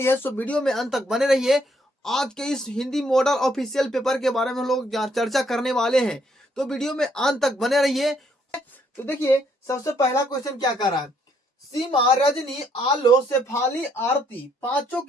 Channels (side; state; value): both; normal; correlation 0.70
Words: है। सो वीडियो में अंत तक बने रहिए। आज के इस हिंदी मॉडल ऑफिशियल पेपर के बारे में हम लोग चर्चा करने वाले हैं, तो वीडियो में अंत तक बने रहिए। तो देखिए, सबसे पहला क्वेश्चन क्या कर रहा है। सीमा, रजनी, आलो, शेफाली, आरती पांचों